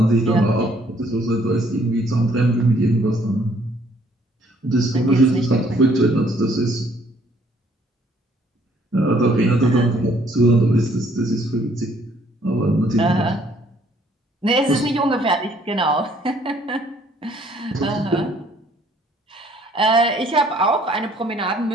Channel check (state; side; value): normal; both; correlation 0.63